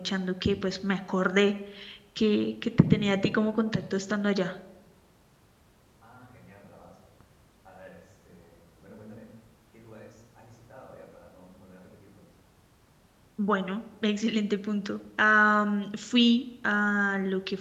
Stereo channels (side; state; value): both; identical; correlation 1.00